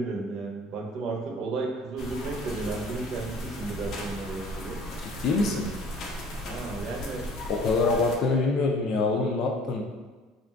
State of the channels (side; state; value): both; normal; correlation 0.49